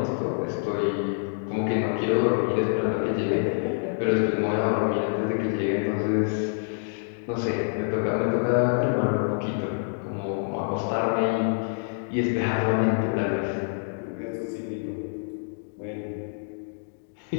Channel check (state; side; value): silent; right; digital silence